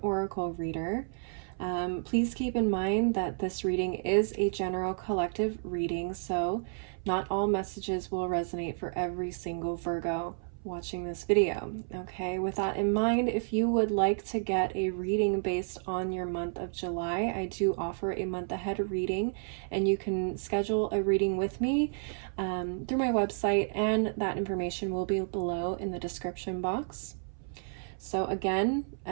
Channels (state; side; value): silent; left; 57 dB below the other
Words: oracle reader. Please keep in mind that this reading is a general collective reading, so not all messages will resonate for every single Virgo watching this video. Okay, with that in mind, if you would like to get a reading based on your month of July, I do offer a month ahead reading, and you can schedule a reading with me through my website, and that information will be below in the description box. So again,